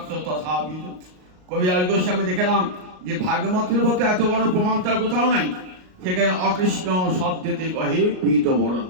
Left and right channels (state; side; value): late; left; 38 ms